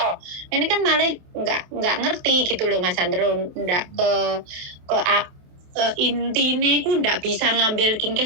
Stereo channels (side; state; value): left; late; 28 ms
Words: Ini kan malah enggak ngerti gitu loh Mas Andro, ndak ke intinya aku ndak bisa ngambil